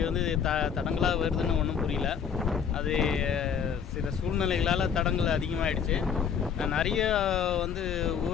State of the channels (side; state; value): right; quieter; 7.3 dB